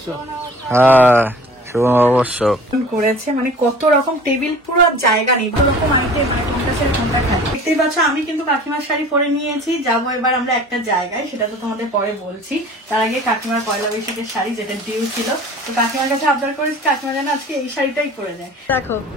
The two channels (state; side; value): normal; both; correlation 0.45